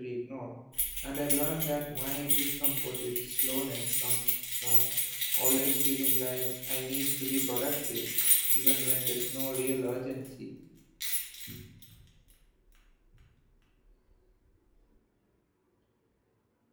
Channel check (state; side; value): identical; both; correlation 1.00